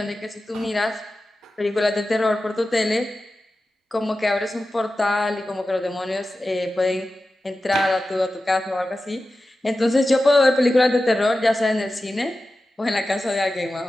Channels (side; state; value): both; normal; correlation 0.94